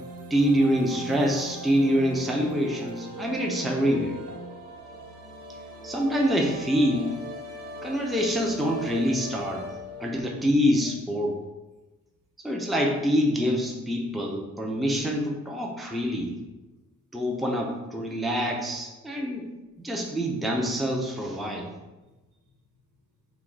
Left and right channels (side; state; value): both; normal; correlation 0.72